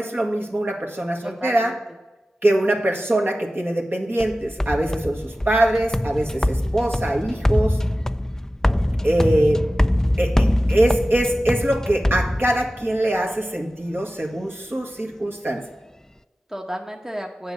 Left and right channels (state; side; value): normal; both; correlation 0.95